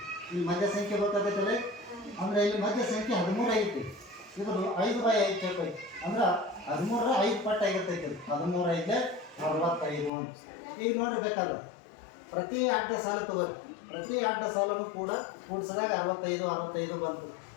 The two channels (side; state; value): right; drops out; at 10.1 s